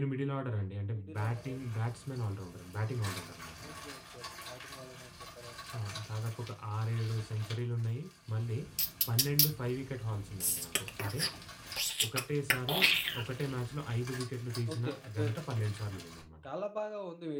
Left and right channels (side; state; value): both; identical; correlation 1.00